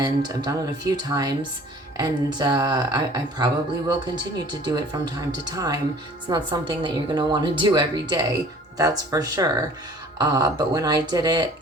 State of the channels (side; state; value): both; normal; correlation 0.50